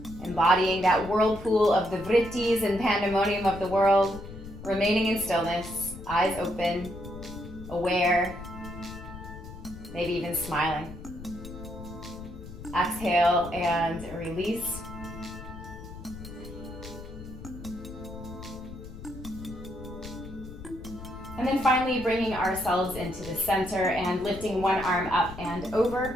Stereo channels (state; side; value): noise; left; rumble, 13 dB below the sound